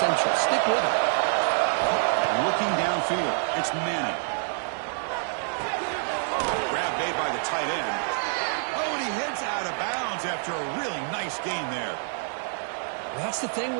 Stick with it. Looking downfield, it's Manning. Grab made by the tight end. Oh, and he heads out of bounds after a really nice gain there. That's the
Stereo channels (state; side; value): silent; left; 60 dB below the other